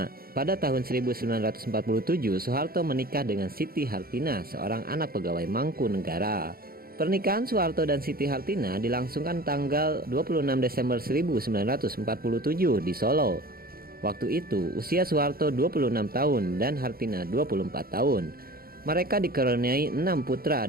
Pada tahun 1947, Soeharto menikah dengan Siti Hartina, seorang anak pegawai Mangkunegara. Pernikahan Soeharto dan Siti Hartina dilangsungkan tanggal 26 Desember 1947 di Solo. Waktu itu usia Soeharto 26 tahun dan Hartina 24 tahun. Mereka dikaruniai 6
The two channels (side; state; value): left; late; 0.43 ms